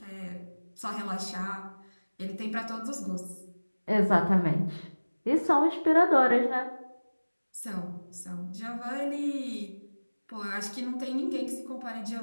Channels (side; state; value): both; inverted; correlation -1.00